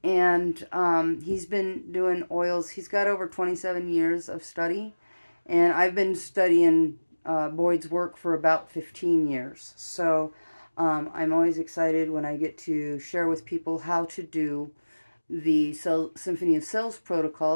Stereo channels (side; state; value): both; inverted; correlation -1.00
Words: and he's been doing oils. He's got over 27 years of study, and I've been studying Boyd's work for about 15 years. So I'm always excited when I get to share with people how to do the Symphony of Cells